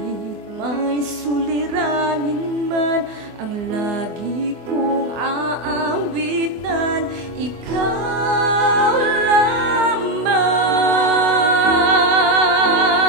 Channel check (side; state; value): left; late; 24 ms